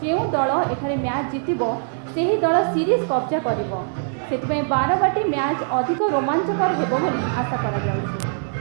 दल एठारे मैच जीतिबो सेही दल सीरीज कब्जा करिबो। सेतिपई बारवाटी मैच अधिक रोमांचकर हेबो बोली आशा करा जाउछि।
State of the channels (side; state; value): left; silent; 64 dB below the other